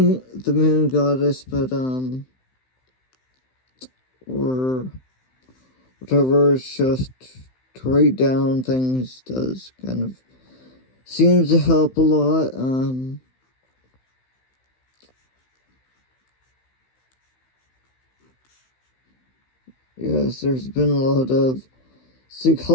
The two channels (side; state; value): right; late; 15 ms